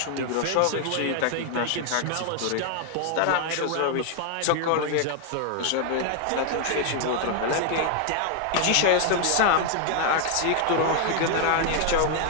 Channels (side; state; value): both; different; correlation 0.00